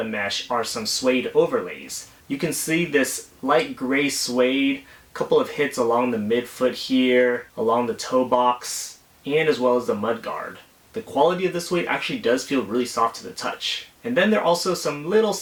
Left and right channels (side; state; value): both; identical; correlation 1.00